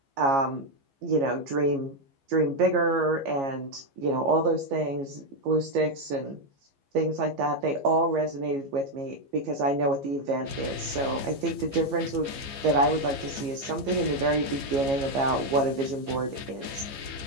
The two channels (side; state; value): left; late; 15 ms